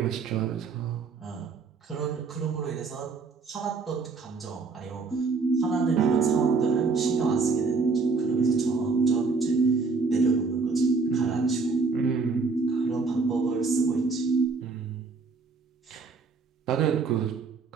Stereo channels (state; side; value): quieter; left; 4.5 dB